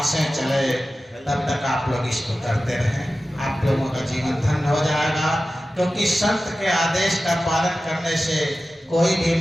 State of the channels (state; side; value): normal; both; correlation 0.94